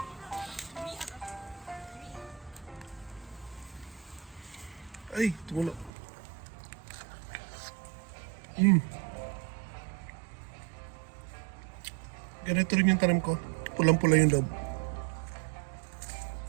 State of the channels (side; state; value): left; drops out; at 5.9 s